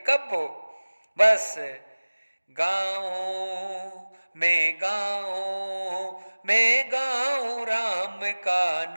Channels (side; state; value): both; inverted; correlation -1.00